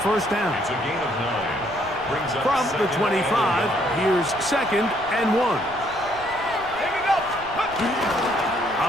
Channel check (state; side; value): noise; right; rumble, 18 dB below the sound